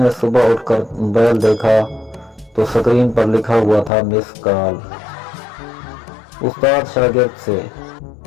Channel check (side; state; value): right; drops out; at 3.9 s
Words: सुबह उठकर मोबाइल देखा तो स्क्रीन पर लिखा हुआ था मिस कॉल। उस्ताद शागिर्द से,